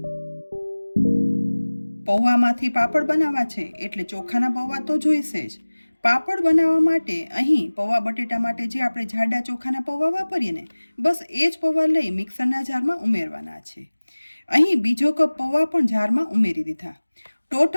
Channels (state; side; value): inverted; both; correlation -1.00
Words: પૌવામાંથી પાપડ બનાવવા છે એટલે ચોખાના પૌવા તો જોઈશે જ. પાપડ બનાવવા માટે અહીં પૌવા બટેટા માટે જે આપણે જાડા ચોખાના પૌવા વાપરીએ ને, બસ એ જ પૌવા લઈ મિક્સરના જારમાં ઉમેરવાના છે. અહીં બીજો કપ પૌવા પણ જારમાં ઉમેરી દીધા.